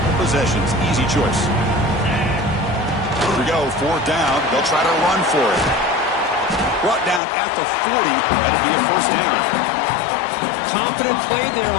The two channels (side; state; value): right; drops out; at 7.2 s